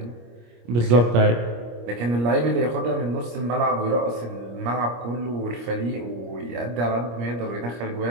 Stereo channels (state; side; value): late; left; 25 ms